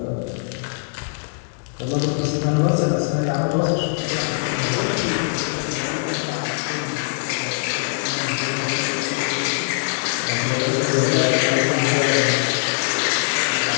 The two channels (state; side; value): silent; right; digital silence